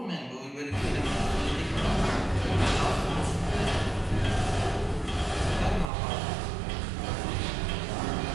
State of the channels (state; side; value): drops out; left; at 5.9 s